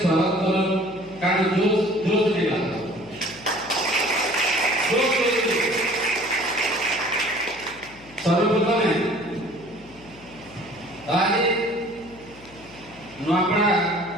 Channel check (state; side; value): noise; left; hum, 23 dB below the sound